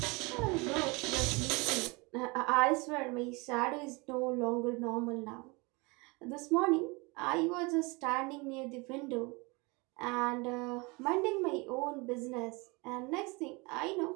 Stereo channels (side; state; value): left; quieter; 27.0 dB